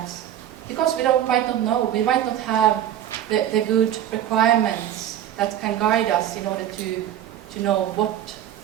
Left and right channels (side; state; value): left; quieter; 11.1 dB